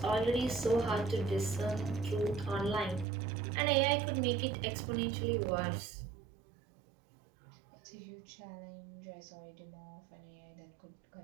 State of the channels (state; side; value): drops out; left; at 3.1 s